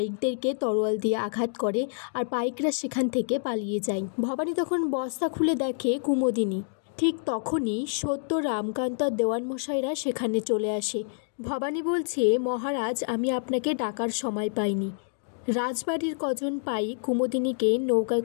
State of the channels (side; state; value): right; silent; digital silence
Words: তরোয়াল দিয়ে আঘাত করে আর পাইকরা সেখান থেকে পালিয়ে যায়। ভবানী তখন বস্তা খুলে দেখে কুমুদিনী। ঠিক তখনই সত্য, রামকান্ত আর দেওয়ানমশাইরা সেখানে চলে আসে। ভবানী বলছে, মহারাজ, আমি আপনাকে ডাকার সময় পাইনি। রাজবাড়ির কজন পাইক কুমুদিনীকে নৌকায়